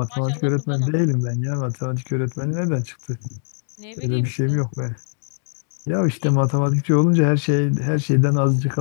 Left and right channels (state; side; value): silent; right; digital silence